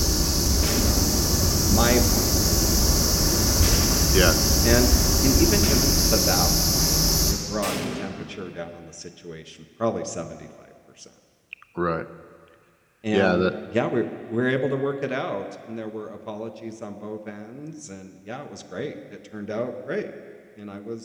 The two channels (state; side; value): identical; both; correlation 1.00